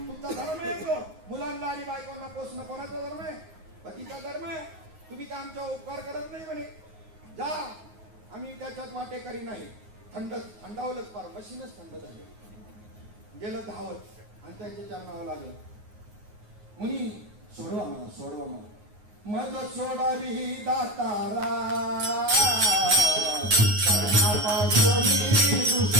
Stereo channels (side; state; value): left; late; 9.5 ms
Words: धर्म आहे तो. मुलांना आणि बायकोंना पोसणं कोणाचा धर्म आहे? पतीचा धर्म आहे. तुम्ही का आमचा उपकार करत नाही म्हणे, जा आम्ही त्याच्यात वाटेकरी नाही. थंडावलंच पार, मशीनच थंड झाले, गेलं धावत आणि त्याच्या चरणावं लागलं. मुनी सोडवा मला, सोडवा मला, मज सोडावी दातारा, कर्णापासून